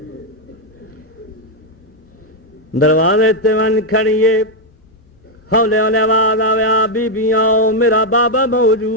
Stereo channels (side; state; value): both; normal; correlation 0.00